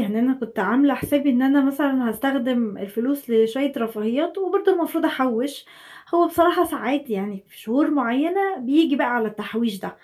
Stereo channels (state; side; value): identical; both; correlation 1.00